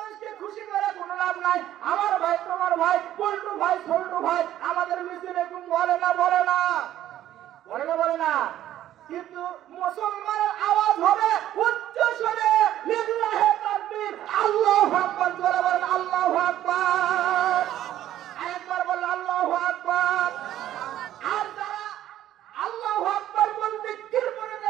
খুশি করে কোনো লাভ নাই। আমার ভাই, তোমার ভাই, পল্টু ভাই, ছোট্টু ভাই আমাদের মিছিল এরকম বলে না, বলে না, বলে না, বলে না। কিন্তু মুসলমানের আওয়াজ হবে উচ্চ স্বরে, লিল্লাহি তাকবীর, আল্লাহু আকবার। জোরে বলেন আল্লাহু আকবার। আরেকবার বলেন আল্লাহু আকবার। আর যারা আল্লাহু আকবার বলতে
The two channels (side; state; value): left; quieter; 12.5 dB